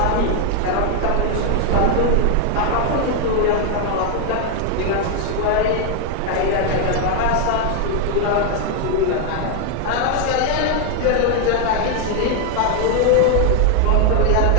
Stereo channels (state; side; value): different; both; correlation 0.01